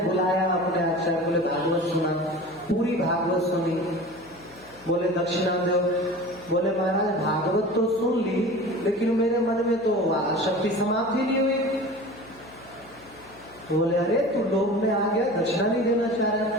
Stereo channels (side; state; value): left; noise; hum, 24 dB below the sound